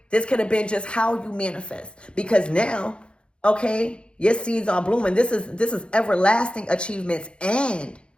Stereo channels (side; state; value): right; late; 0.056 ms